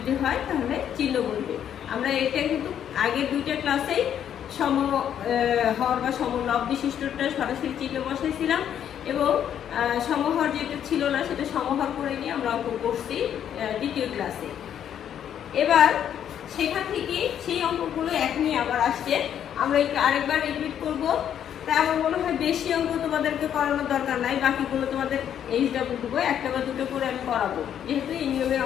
হয় তাহলে চিহ্ন বলবে। আমরা এটা কিন্তু আগের দুইটা ক্লাসেই সমহর বা সমলব বিশিষ্টটা সরাসরি চিহ্ন বসাইছিলাম এবং সমহর যেটা ছিল না সেটা সমহর করে নিয়ে আমরা অঙ্ক করছি দ্বিতীয় ক্লাসে। এবার সেখান থেকে সেই অঙ্কগুলো এক নিয়ে আবার আসছে, আমরা আরেকবার রিপিট করব। তাই আমার মনে হয় বেশি অঙ্ক তোমাদেরকে করানোর দরকার নাই, বাকিগুলো তোমাদের এইচডব্লিউ দেবো, একটা বা দুটো করে আমি করাবো, যেহেতু এই নিয়মের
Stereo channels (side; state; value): right; quieter; 9.6 dB